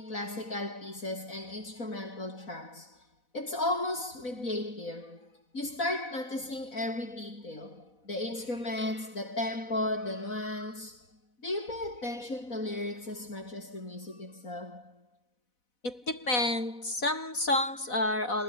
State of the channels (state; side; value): late; right; 4.0 ms